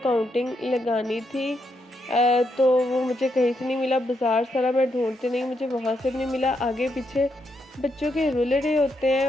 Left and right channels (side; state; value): both; normal; correlation 0.80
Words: लगानी थी। तो वो मुझे कहीं से नहीं मिला, बाज़ार सारा मैं ढूंढती नहीं, मुझे वहाँ से भी नहीं मिला। आगे पीछे बच्चों के रूलर होते